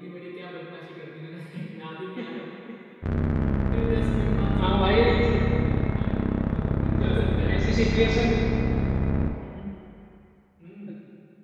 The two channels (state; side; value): identical; both; correlation 1.00